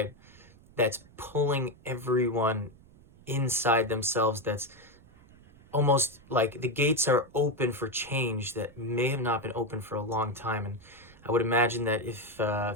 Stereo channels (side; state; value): right; noise; rumble, 25 dB below the sound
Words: that's pulling everyone inside themselves. That's almost like the gates are open for change that may have not been open for a long time. And I would imagine that if